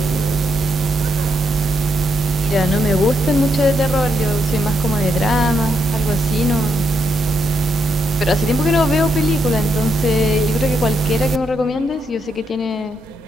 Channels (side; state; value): both; normal; correlation 0.80